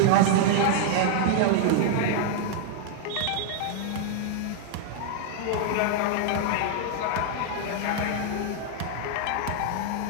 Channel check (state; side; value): different; both; correlation -0.01